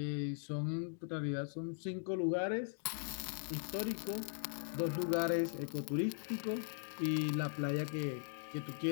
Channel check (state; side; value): silent; right; digital silence